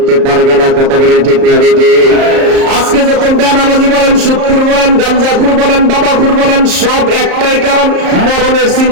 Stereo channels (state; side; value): late; left; 34 ms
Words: পারবে না। কথা বলেন ঠিক না বেঠিক? আজকে যখন বেনামাজি বলেন, সুদখোর বলেন, গাঞ্জাখোর বলেন, বাবাখোর বলেন, সব একটাই কারণ, মরণের